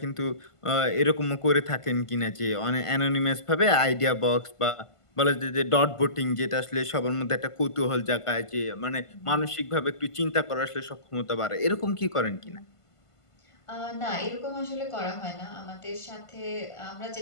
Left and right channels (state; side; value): late; right; 1.5 ms